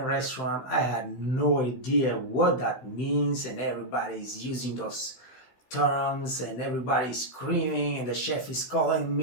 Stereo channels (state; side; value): late; right; 15 ms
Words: restaurant. I had no idea what that means, and everybody's using those terms, and everybody's screaming, and the chef is calling